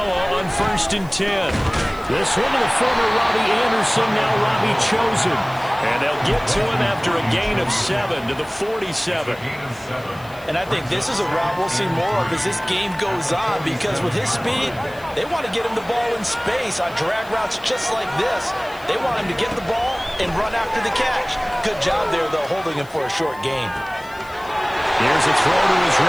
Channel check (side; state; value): left; noise; hiss, 24 dB below the sound